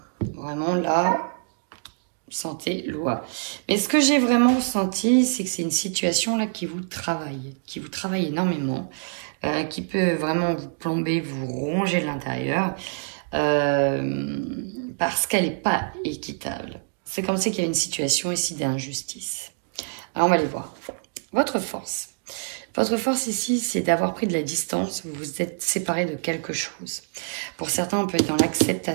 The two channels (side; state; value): left; silent; digital silence